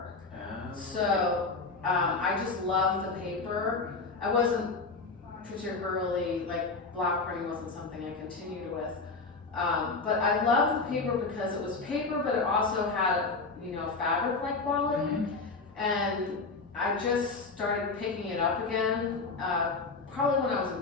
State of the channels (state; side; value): quieter; right; 4.0 dB